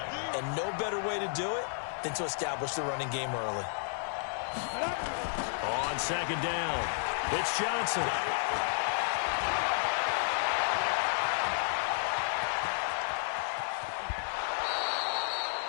and no better way to do it than to establish the running game early. On second down, it's Johnson.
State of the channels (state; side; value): silent; right; digital silence